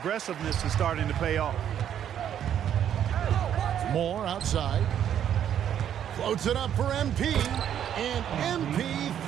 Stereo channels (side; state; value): left; quieter; 9.8 dB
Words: is starting to pay off. Moore outside. Floats it up for MP. And MP